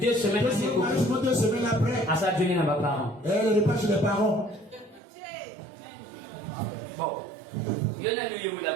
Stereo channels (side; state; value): left; drops out; at 5.0 s